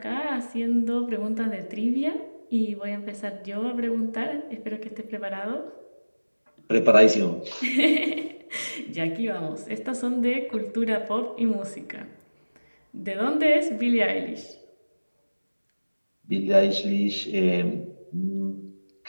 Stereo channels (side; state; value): both; inverted; correlation -1.00